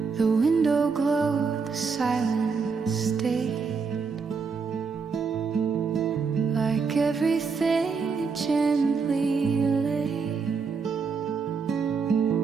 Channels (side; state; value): left; quieter; 5.2 dB